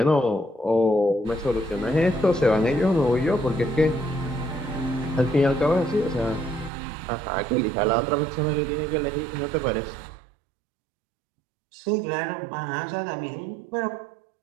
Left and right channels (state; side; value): drops out; left; at 6.7 s